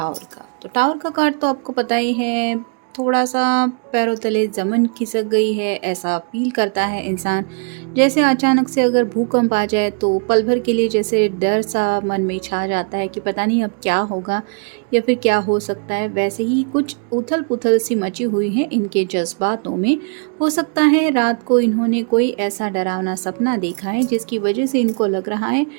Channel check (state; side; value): quieter; left; 38.3 dB